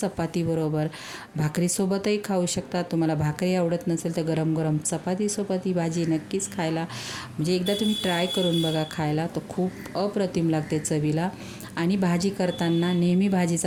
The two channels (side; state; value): both; identical; correlation 1.00